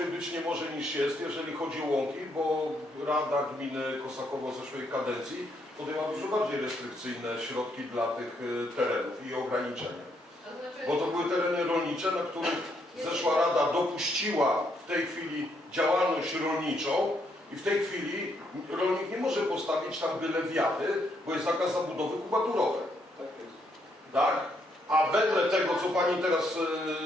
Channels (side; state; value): both; normal; correlation 0.74